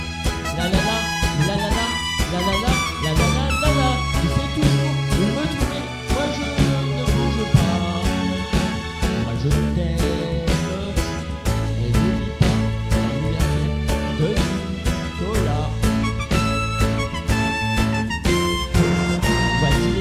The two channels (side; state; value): both; identical; correlation 1.00